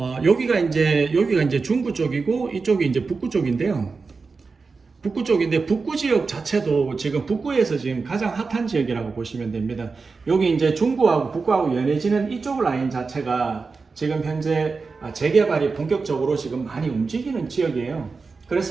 여기가 이제 중구 쪽이고 이쪽이 이제 북구 쪽인데요. 북구 쪽인데 북구 지역 자체도 지금 북구에서 지금 가장 핫한 지역이라고 보시면 됩니다. 여기 이제 중구하고 북구하고 연해지는 이쪽 라인 자체가 지금 현재 재개발이 본격적으로 지금 많이 움직이는 지역이에요.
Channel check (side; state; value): left; quieter; 4.5 dB